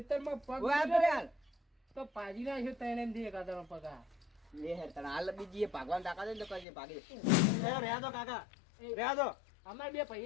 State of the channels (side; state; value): right; drops out; at 6.7 s